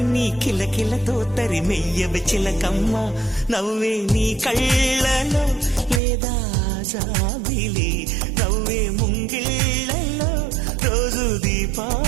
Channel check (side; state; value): left; drops out; at 6.0 s